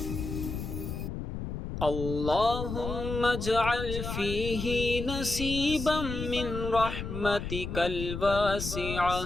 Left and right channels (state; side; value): noise; left; rumble, 6 dB below the sound